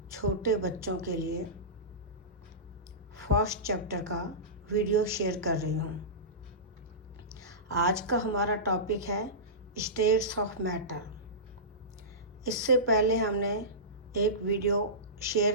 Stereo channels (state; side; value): normal; both; correlation -0.20